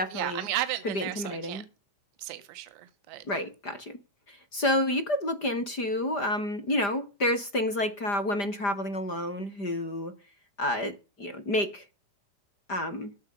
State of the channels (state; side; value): late; right; 5.0 ms